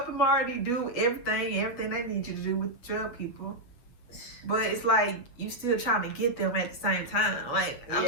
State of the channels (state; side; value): late; right; 8.1 ms